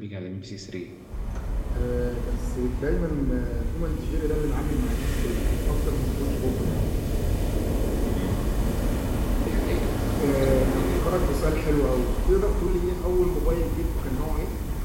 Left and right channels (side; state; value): both; identical; correlation 1.00